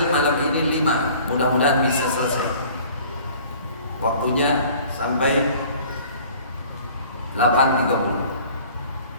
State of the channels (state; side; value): inverted; both; correlation -0.50